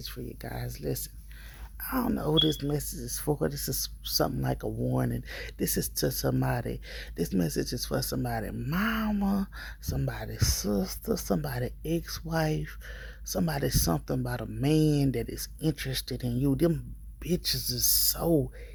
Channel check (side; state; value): both; identical; correlation 1.00